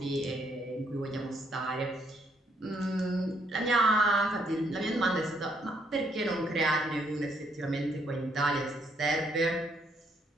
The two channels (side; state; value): both; normal; correlation 0.71